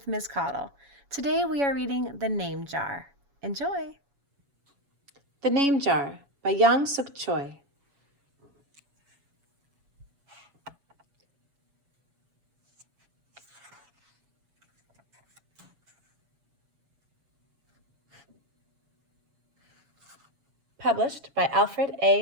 Ms. Caudle. Today we are reading The Name Jar. Enjoy! The Name Jar by Jangsook Choi. Published by Alfred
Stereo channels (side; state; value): left; late; 7.1 ms